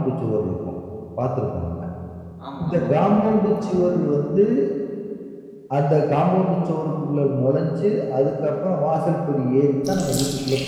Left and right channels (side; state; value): both; identical; correlation 1.00